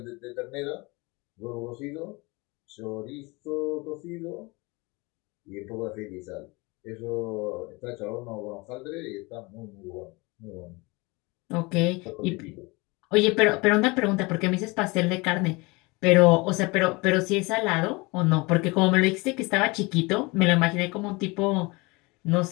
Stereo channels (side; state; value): right; quieter; 25.5 dB